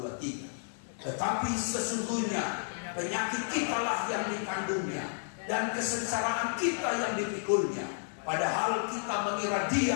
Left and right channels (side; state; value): right; silent; digital silence